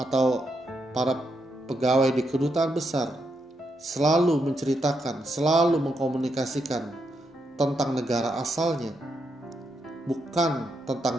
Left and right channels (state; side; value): normal; both; correlation 0.81